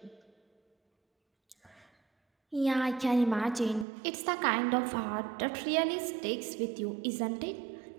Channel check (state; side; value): drops out; left; at 3.9 s